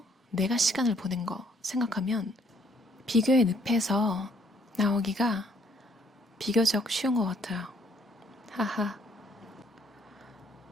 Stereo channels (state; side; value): normal; both; correlation 0.65